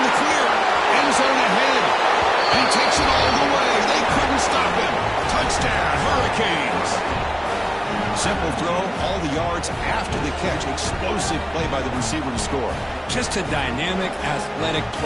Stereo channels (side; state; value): both; identical; correlation 1.00